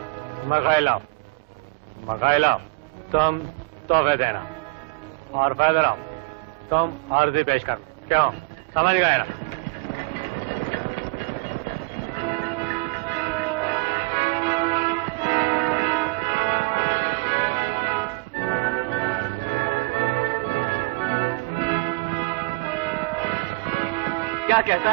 मगाइला तुम तोहफे देना और फैदराम तुम आरजी पेश कर। क्यों, समझ गए ना? क्या कहता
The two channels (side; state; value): left; quieter; 24.4 dB